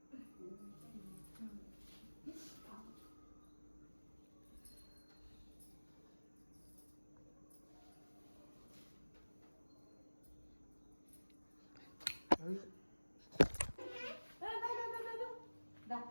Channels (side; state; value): both; inverted; correlation -1.00